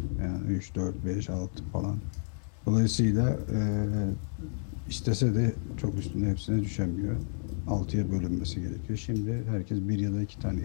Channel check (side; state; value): right; silent; digital silence